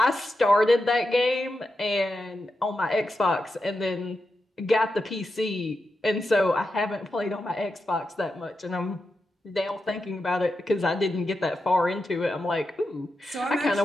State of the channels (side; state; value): both; normal; correlation 0.88